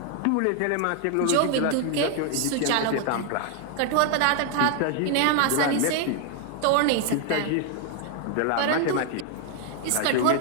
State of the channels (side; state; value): both; different; correlation 0.00